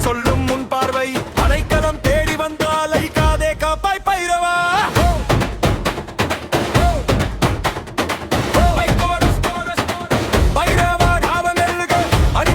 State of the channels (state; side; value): identical; both; correlation 1.00